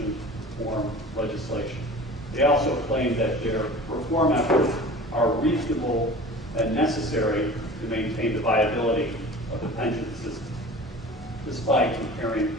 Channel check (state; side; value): normal; both; correlation 0.40